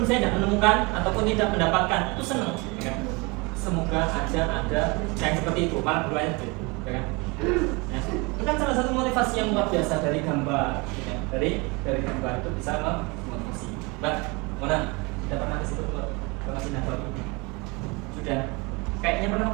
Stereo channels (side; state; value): left; quieter; 27.5 dB